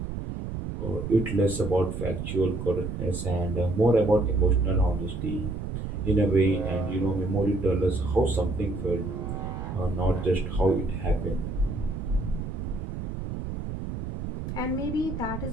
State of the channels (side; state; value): right; noise; rumble, 5 dB below the sound